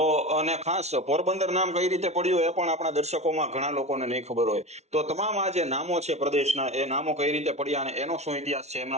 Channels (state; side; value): late; left; 0.32 ms